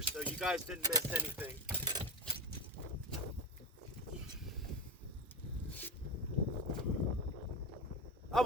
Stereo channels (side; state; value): both; normal; correlation 0.20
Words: so you guys didn't miss anything. I